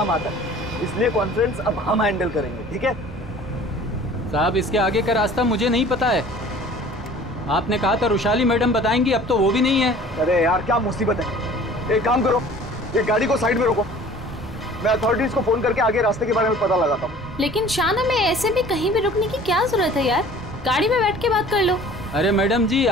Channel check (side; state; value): both; normal; correlation 0.48